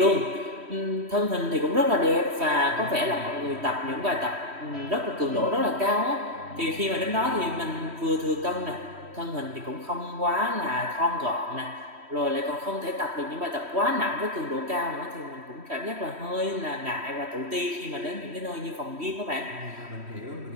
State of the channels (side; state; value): left; late; 3.1 ms